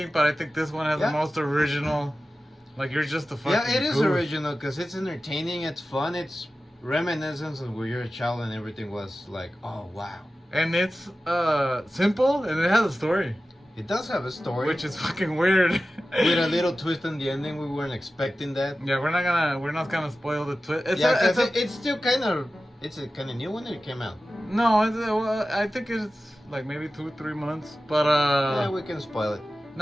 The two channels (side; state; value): both; normal; correlation 0.95